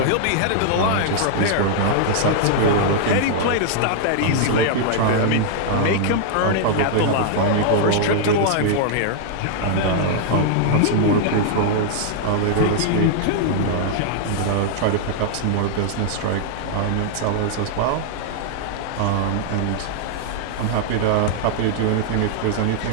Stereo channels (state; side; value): different; both; correlation -0.01